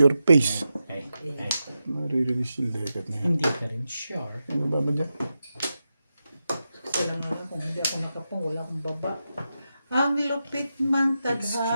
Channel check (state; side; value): inverted; both; correlation -0.89